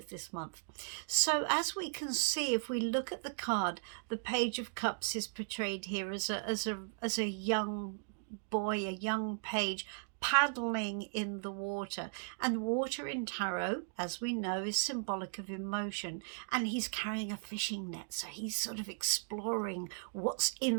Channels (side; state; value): left; silent; digital silence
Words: this month. So as we can see, if we look at the card, the Page of Cups is portrayed here as a young boy, a young page, paddling in the water. And water in tarot, as we know, is symbolic of emotion, and he's carrying a fishing net, so he's sort of exploring what's